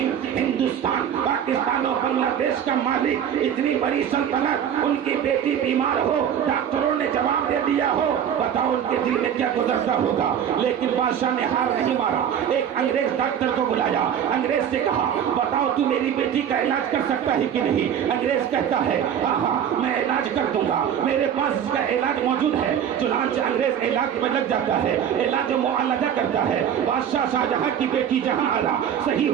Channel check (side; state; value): left; quieter; 9.0 dB